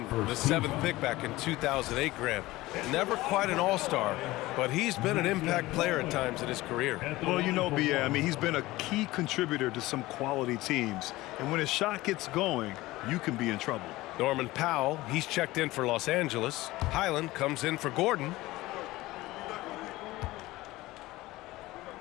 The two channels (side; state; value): right; quieter; 18.6 dB